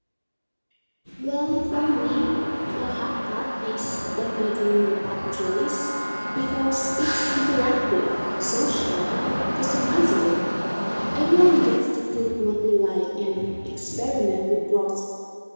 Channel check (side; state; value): both; inverted; correlation -1.00